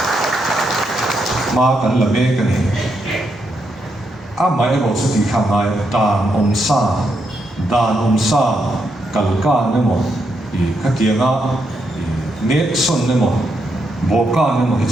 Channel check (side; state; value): both; normal; correlation 0.80